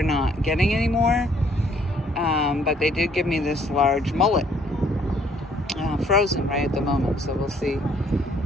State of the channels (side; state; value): both; normal; correlation 0.63